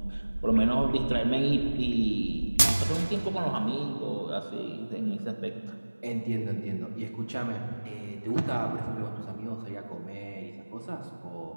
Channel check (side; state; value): both; inverted; correlation -1.00